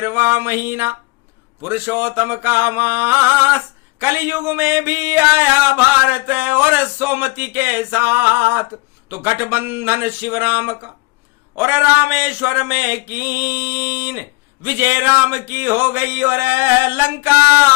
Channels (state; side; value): quieter; right; 24.8 dB